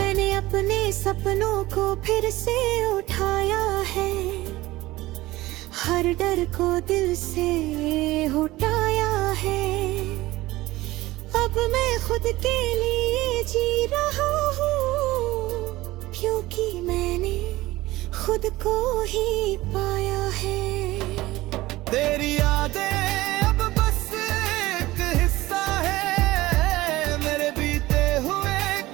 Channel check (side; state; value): left; quieter; 18.2 dB